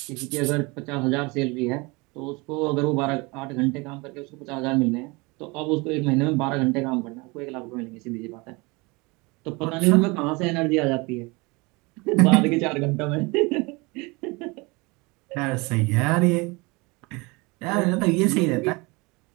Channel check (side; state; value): left; quieter; 26.2 dB